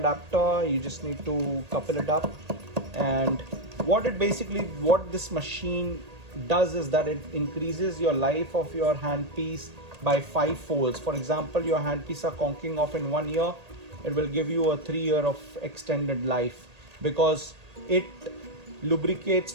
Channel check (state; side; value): late; left; 1.8 ms